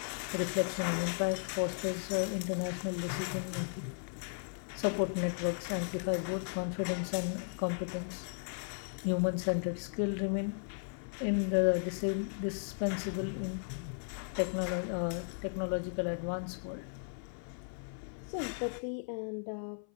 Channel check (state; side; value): silent; right; 54 dB below the other